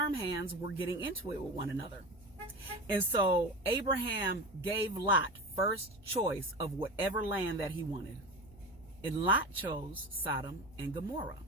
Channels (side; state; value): both; normal; correlation 0.27